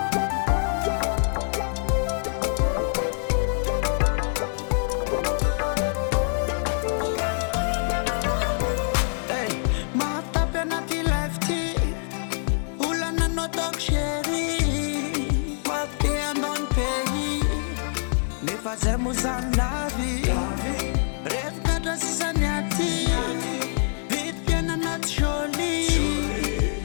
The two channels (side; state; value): right; silent; 62 dB below the other